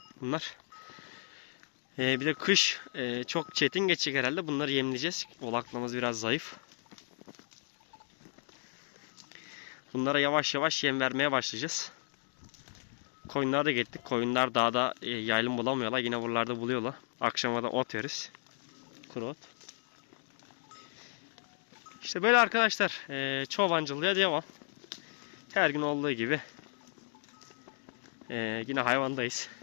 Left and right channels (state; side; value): silent; right; digital silence